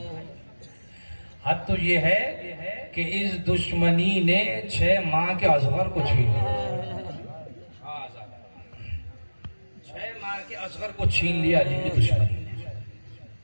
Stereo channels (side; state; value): both; inverted; correlation -1.00